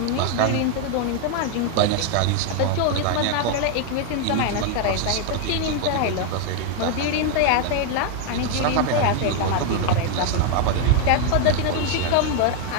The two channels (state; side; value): different; both; correlation 0.01